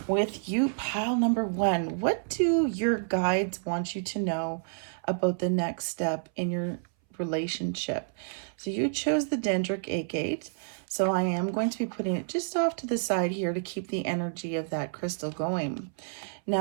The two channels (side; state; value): left; silent; 58 dB below the other